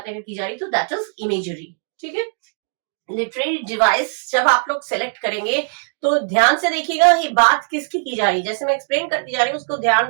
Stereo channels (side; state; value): left; silent; digital silence